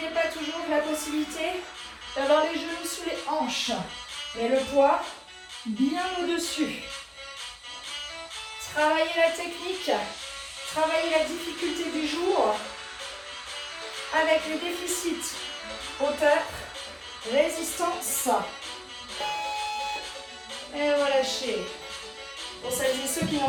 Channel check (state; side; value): identical; both; correlation 1.00